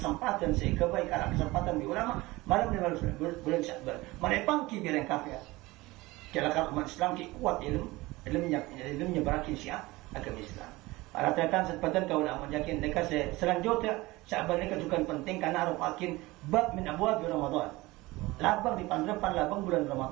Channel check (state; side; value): quieter; left; 20.6 dB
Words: sehingga baik ada kesempatan di ulama malam bulan Sya'ban mereka pangki biar yang kafir kalau umat Islam kuat ilmunya berakin syiah agama Islam para tetan sepadan kau ulama yakin mereka selanjutnya Sya'ban mereka juga penting karena arupakin bab min abwab Ramadan labang di pandepan labang bulan